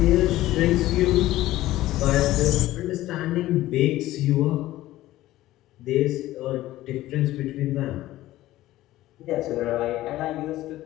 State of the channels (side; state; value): right; quieter; 15.7 dB